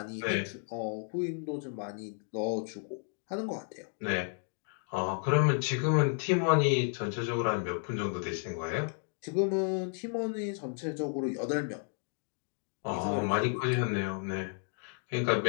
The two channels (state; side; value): silent; right; 56 dB below the other